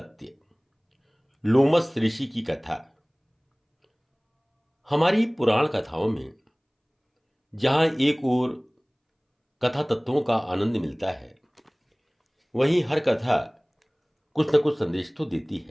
लोमस ऋषि की कथा। हमारी पुराण कथाओं में जहां एक ओर कथा तत्वों का आनंद मिलता है, वहीं हर कथा कुछ न कुछ संदेश तो देती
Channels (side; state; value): both; identical; correlation 1.00